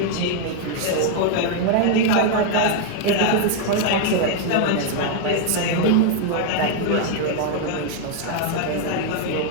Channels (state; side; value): different; both; correlation 0.00